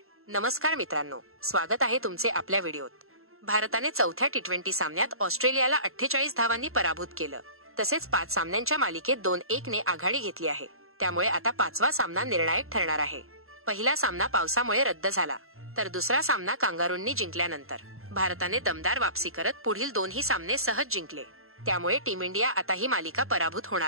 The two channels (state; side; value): late; left; 0.62 ms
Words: नमस्कार मित्रांनो, स्वागत आहे तुमचे आपल्या व्हिडिओत. भारताने चौथ्या टी20 सामन्यात ऑस्ट्रेलियाला 48 धावांनी पराभूत केलं. तसेच 5 सामन्यांच्या मालिकेत 2-1 ने आघाडी घेतली आहे. त्यामुळे आता 5वा सामना निर्णायक ठरणार आहे. पहिला सामना पावसामुळे रद्द झाला, तर दुसरा सामना कांगारूंनी जिंकल्यानंतर भारताने दमदार वापसी करत पुढील 2ही सामने सहज जिंकले. त्यामुळे टीम इंडिया आता ही मालिका पराभूत